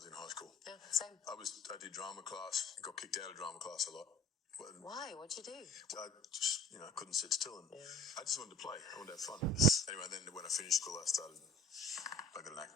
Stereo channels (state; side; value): normal; both; correlation 0.44